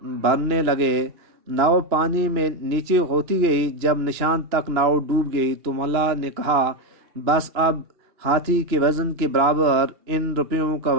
بھرنے لگے۔ ناؤ پانی میں نیچے ہوتی گئی۔ جب نشان تک ناؤ ڈوب گئی تو ملا نے کہا، بس اب ہاتھی کے وزن کے برابر ان روپیوں کا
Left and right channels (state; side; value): late; left; 2.9 ms